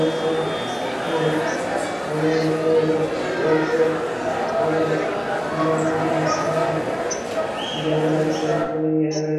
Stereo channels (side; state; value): both; identical; correlation 1.00